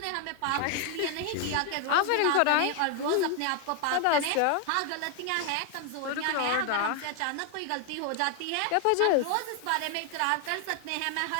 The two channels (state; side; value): different; both; correlation 0.01